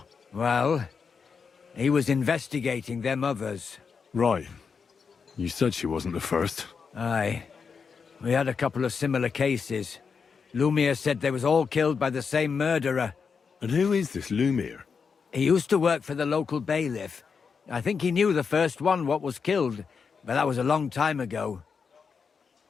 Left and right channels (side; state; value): right; quieter; 5.7 dB